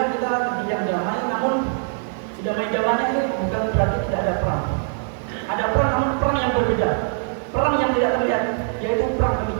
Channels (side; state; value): left; silent; digital silence